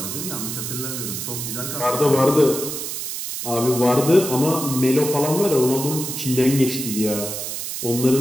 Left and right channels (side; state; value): right; noise; hiss, 5 dB below the sound